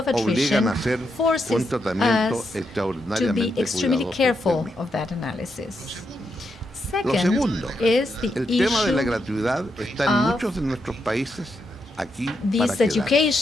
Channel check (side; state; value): both; normal; correlation 0.82